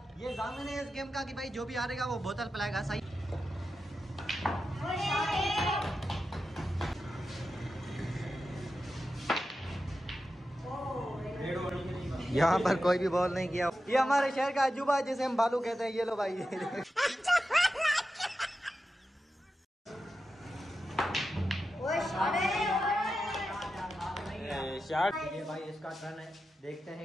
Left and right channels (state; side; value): normal; both; correlation 0.91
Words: ये जामिन है इस गेम का कि भाई जो भी हारेगा वो बोतल पिलाएगा। सही। यहाँ पर कोई भी बॉल नहीं किया। ये हमारे शहर का अजूबा है जिसे हम बालू कहते हैं। ये लो भाई शॉट। ये भाई इसका टर्न है, देखते